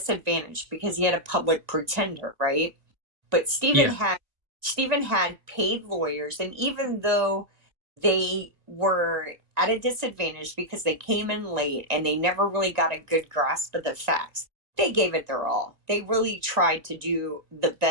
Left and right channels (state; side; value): late; left; 2.0 ms